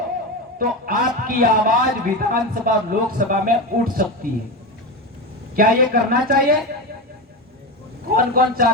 तो आपकी आवाज विधानसभा लोकसभा में उठ सकती है। क्या ये करना चाहिए? कौन कौन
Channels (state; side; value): normal; both; correlation 0.18